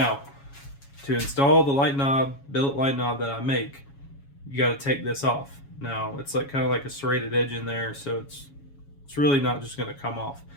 to install the light knob, billet light knob that I make, you got to take this off. Now, it's like kind of like a serrated edge in there, so it's really not just going to come off.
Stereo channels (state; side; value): late; right; 7.2 ms